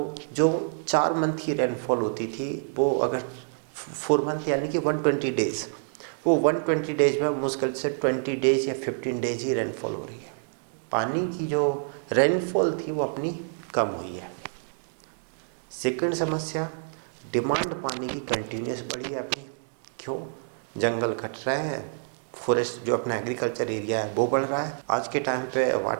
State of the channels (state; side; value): silent; left; digital silence